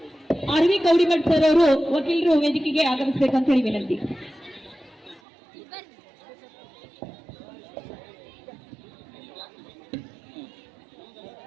ಆರ್ವಿ ಕೌಡಿಮಠ್ ಸರ್ ಅವರು ವಕೀಲರು ವೇದಿಕೆಗೆ ಆಗಮಿಸಬೇಕಂತ ಹೇಳಿ ವಿನಂತಿ.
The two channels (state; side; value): drops out; left; at 5.2 s